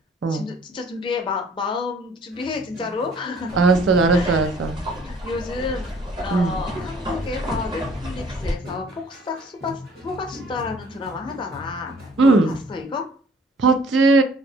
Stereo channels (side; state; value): both; normal; correlation 0.56